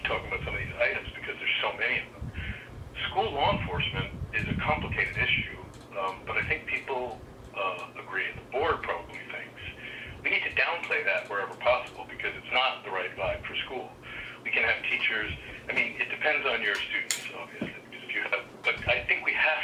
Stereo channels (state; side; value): identical; both; correlation 1.00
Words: talking about some of these items because there's so many of them. school law enforcement is a complicated issue, but I think people agree, and the board probably thinks, we need to downplay that wherever possible because it's not the right vibe for school. We can have teachers, I mean, it depends on your students, obviously, because if you have, but I think we